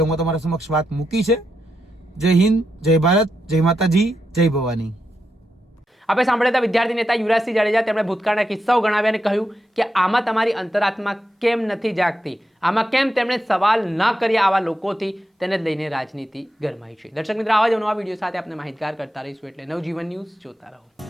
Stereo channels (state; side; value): normal; both; correlation 0.85